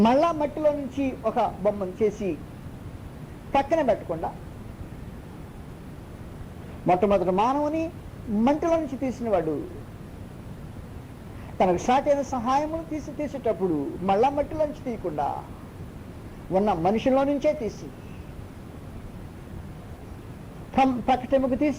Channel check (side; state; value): both; identical; correlation 1.00